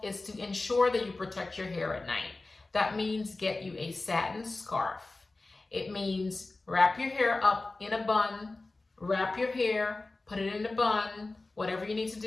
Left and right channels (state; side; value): quieter; right; 3.3 dB